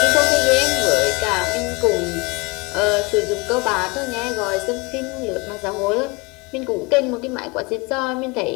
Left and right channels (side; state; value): right; quieter; 27.3 dB